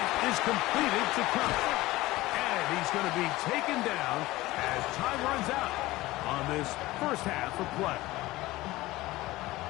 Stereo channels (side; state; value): right; quieter; 18.4 dB